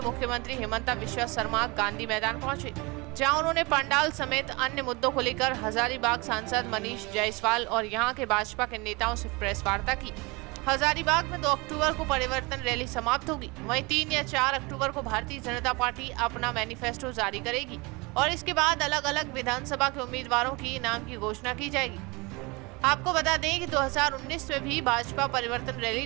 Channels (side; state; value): left; quieter; 26.3 dB